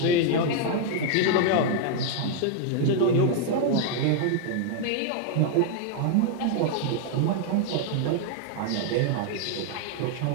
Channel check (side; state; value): both; different; correlation 0.00